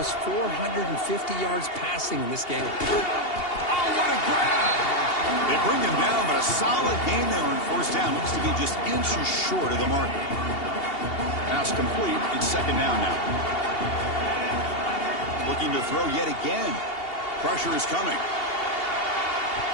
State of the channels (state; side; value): late; right; 2.8 ms